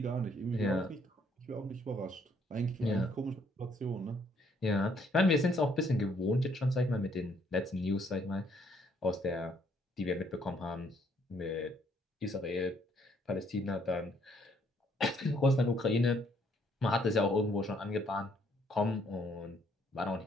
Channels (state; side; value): normal; both; correlation 0.67